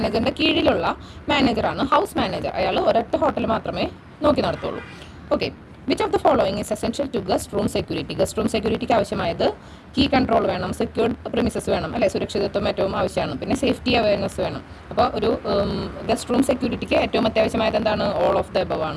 കീഴിലുള്ള മാനേജറാണ് ഹൗസ് മാനേജർ. അയാൾ ഒരൊറ്റ ഹോട്ടൽ മാത്രമേ നോക്കി നടത്തുള്ളൂ. Okay. Which of the following is essential to guest room security? Guest room സെക്യൂരിറ്റിക്ക് ആവശ്യമായത് കീ കൺട്രോൾ വേണം, സെക്യൂർഡ് പ്രിമിസസ് വേണം, അല്ലെ, സുരക്ഷിതത്വം ഏറ്റവും ആവശ്യമാണ്, പിന്നെ സേഫ്റ്റി അവയർനെസ് വേണം. അപ്പോൾ ഒരു ഗസ്റ്റ് റൂം സെക്യൂരിറ്റിക്ക് ഏറ്റവും അത്യാവശ്യമായത് എന്താണ്? ഓൾ ഓഫ് ദ എബവ്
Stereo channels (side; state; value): both; identical; correlation 1.00